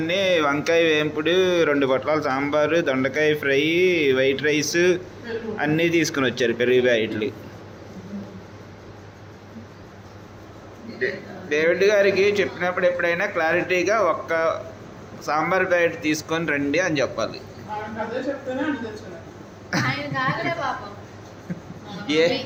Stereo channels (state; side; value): identical; both; correlation 1.00